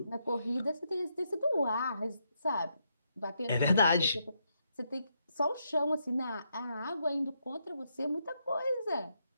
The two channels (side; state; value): both; inverted; correlation -0.79